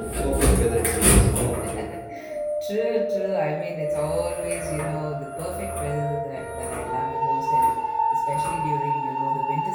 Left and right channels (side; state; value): both; identical; correlation 1.00